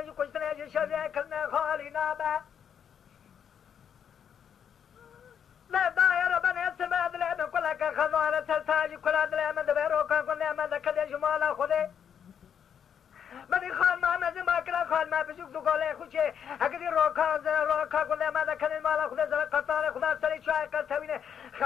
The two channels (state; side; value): quieter; right; 8.1 dB